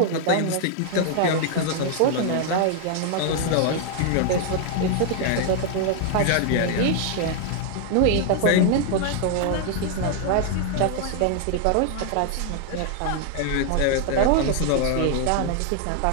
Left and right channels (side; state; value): both; different; correlation 0.00